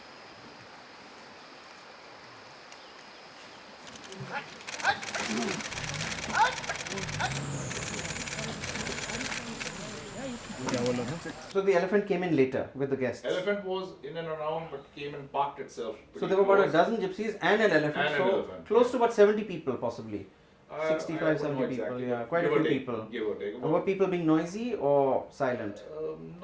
So the elephant came in later with the guests. Elephant was in and around, but came and parked itself. So there were about a close. dozen gypsies and an elephant. And an So elephant, close yeah. to about 70 people possibly. 65, I wouldn't 70 know people, exactly. yeah, quite Give a or few take, people. Give or take. Were people being noisy or silent?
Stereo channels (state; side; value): identical; both; correlation 1.00